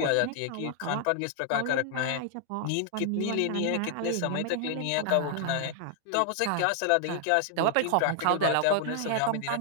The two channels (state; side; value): different; both; correlation 0.00